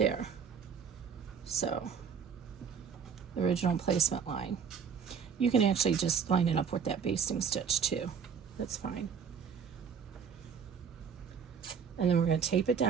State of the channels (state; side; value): quieter; left; 6.7 dB